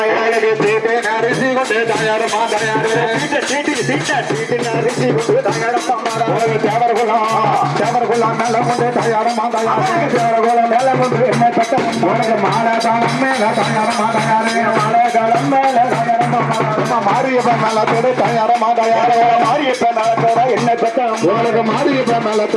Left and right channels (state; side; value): identical; both; correlation 1.00